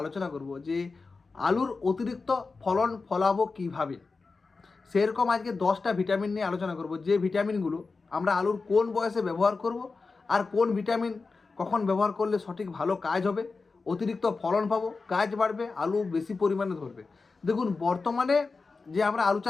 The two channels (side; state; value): right; quieter; 4.2 dB